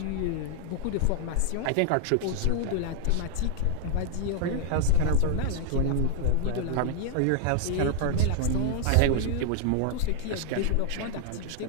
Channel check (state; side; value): different; both; correlation 0.00